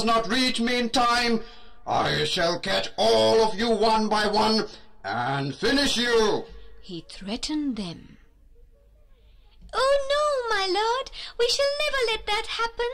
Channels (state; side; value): identical; both; correlation 1.00